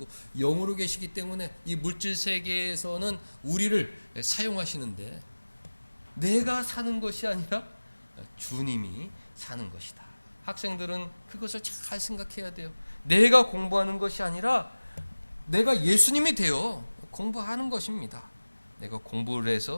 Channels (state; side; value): inverted; both; correlation -1.00